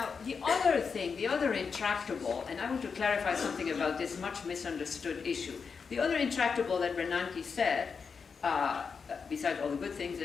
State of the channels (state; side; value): quieter; right; 5.6 dB